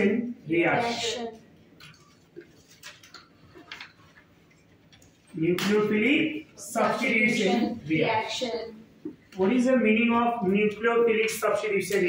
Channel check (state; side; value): identical; both; correlation 1.00